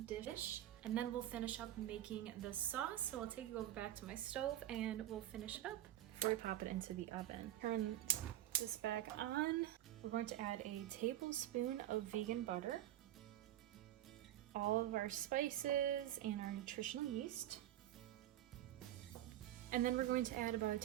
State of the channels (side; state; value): left; quieter; 13.1 dB